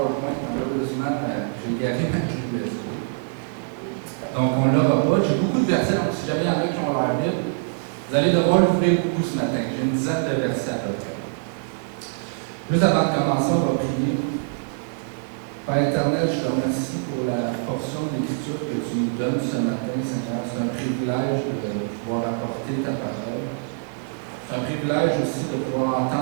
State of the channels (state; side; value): silent; left; 61 dB below the other